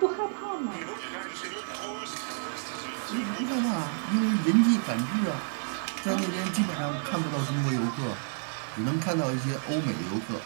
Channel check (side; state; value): left; silent; 58 dB below the other